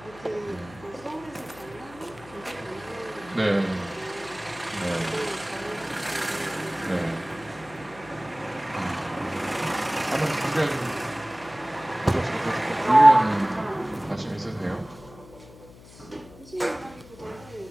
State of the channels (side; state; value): left; noise; hum, 20 dB below the sound